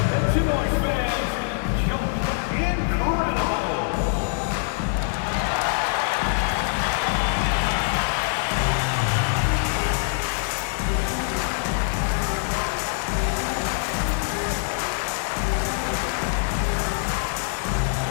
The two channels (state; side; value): silent; right; 62 dB below the other